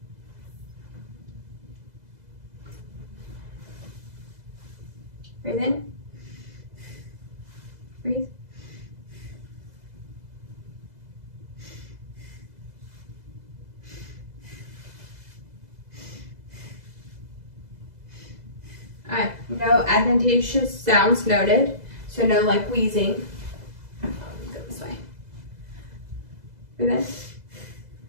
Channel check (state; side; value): late; left; 2.0 ms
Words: Breathe in. Breathe. Alright, no adventitious sounds noted. So no like wheezing. Go this way. Breathe in.